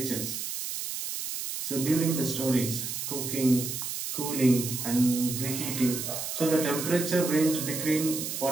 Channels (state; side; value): noise; right; hiss, 5 dB below the sound